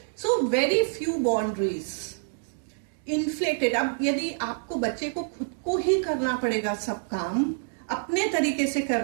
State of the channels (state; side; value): silent; left; digital silence